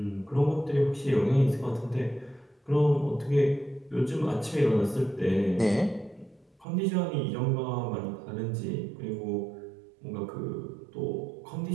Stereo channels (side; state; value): left; drops out; at 6.7 s